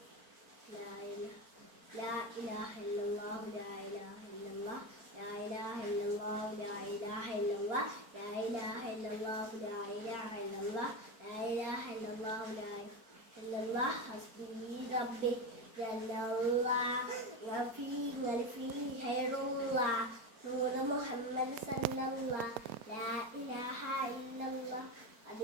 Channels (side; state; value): left; late; 4.4 ms